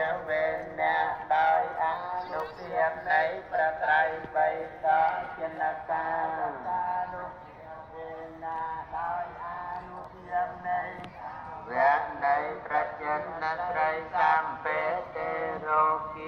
វេអ្នកដោយអនុភាពនៃព្រះត្រៃបិដកចិនកានុភាវេអ្នកដោយអនុភាពនៃវៈនៃប្រចិនត្រីសម្បេទេរោគ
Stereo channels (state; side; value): identical; both; correlation 1.00